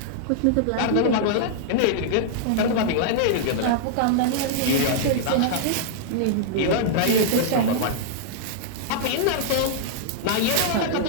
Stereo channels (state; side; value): different; both; correlation -0.02